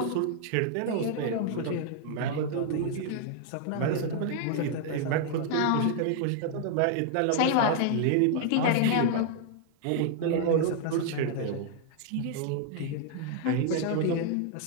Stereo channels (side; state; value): both; different; correlation 0.00